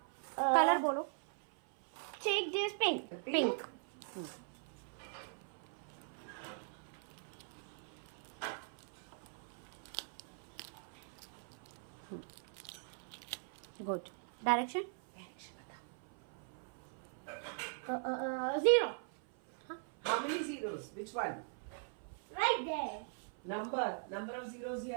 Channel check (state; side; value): silent; left; 51 dB below the other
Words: colour बोलो। Take this pink. Pink. Good. Direction? 0. How many zeros? Which one? Right there. Number of zeros